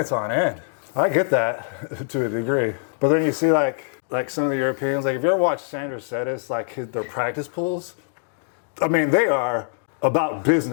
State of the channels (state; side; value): silent; right; digital silence